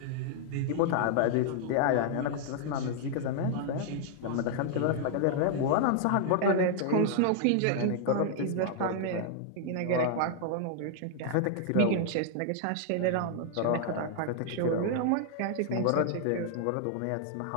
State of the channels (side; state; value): both; different; correlation 0.00